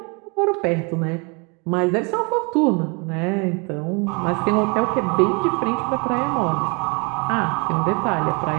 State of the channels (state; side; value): quieter; left; 31.9 dB